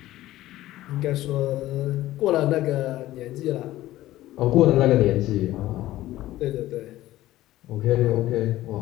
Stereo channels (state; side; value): quieter; right; 15.5 dB